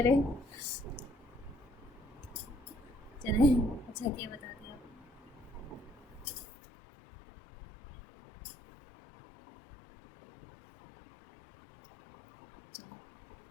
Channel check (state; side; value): drops out; right; at 6.5 s